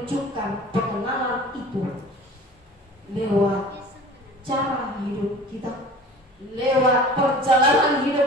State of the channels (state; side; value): normal; both; correlation 0.42